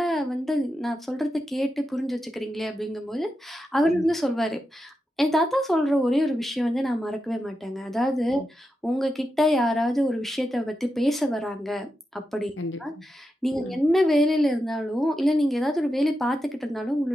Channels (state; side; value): normal; both; correlation 0.88